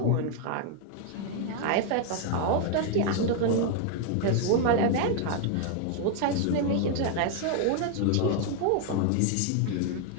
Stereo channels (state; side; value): different; both; correlation 0.00